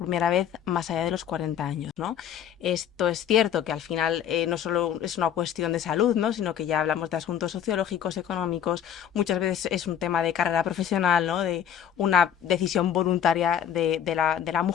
vez más allá de los 40 años, ¿no? Esto es cierto que al final no solo es una cuestión de salud, ¿no? Sino que ya hablamos de asuntos sociológicos, económicos, muchas veces es un tema de carrera profesional, ¿no? De una decisión voluntaria de la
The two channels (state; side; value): quieter; right; 9.3 dB